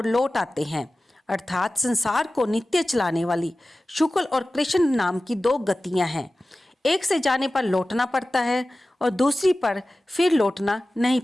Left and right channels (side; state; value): both; normal; correlation 0.96